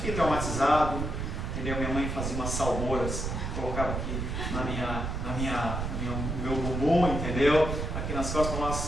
traumatizado, entendeu? Minha mãe fazia umas salmouras, colocava aqui no meu bumbum, entendeu? Aqui nas costas, uma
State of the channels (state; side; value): noise; right; rumble, 3 dB below the sound